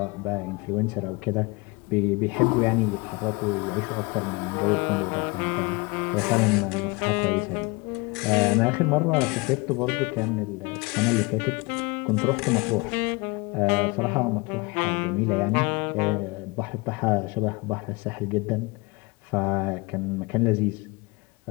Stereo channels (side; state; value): right; quieter; 26.2 dB